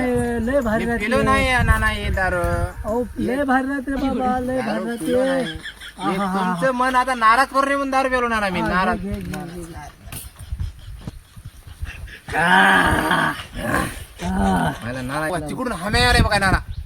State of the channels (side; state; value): both; identical; correlation 1.00